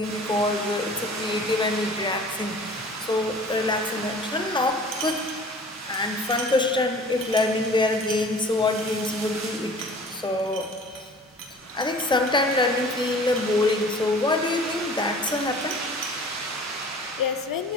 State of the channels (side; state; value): both; normal; correlation 0.46